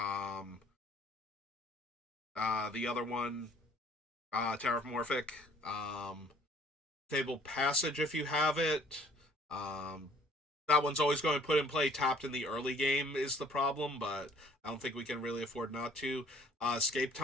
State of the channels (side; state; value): both; normal; correlation 0.57